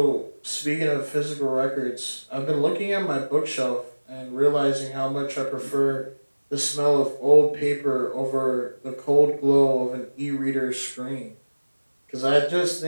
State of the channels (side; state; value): both; inverted; correlation -1.00